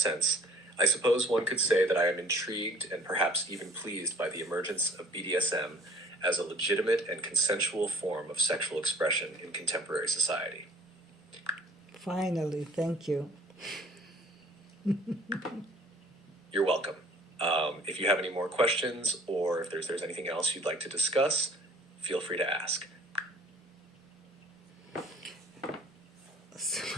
I suppose one could say that I am intrigued and perhaps even pleased by the emergence of BDSM as a legitimate and consensual form of sexual expression in contemporary society. Finally, thank you. You're welcome. If you have any more questions or if there's anything else you'd like to discuss, feel free to ask. So,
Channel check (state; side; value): normal; both; correlation 0.56